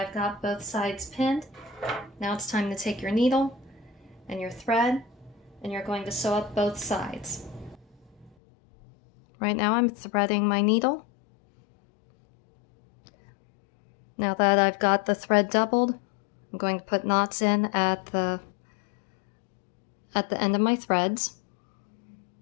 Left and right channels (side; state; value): right; drops out; at 8.3 s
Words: got both sides pinned, now it's time to take your needle and your thread and you're going to sew up both sides. Right now I'm threading my needle. Now that I've got the thread doubled, I'm going to put knots in at the end of my threads.